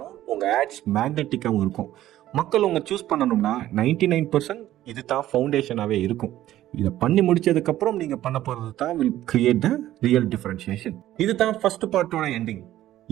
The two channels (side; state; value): left; quieter; 13.7 dB